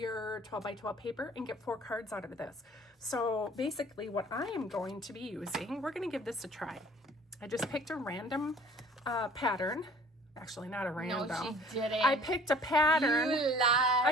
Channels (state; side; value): normal; both; correlation 0.51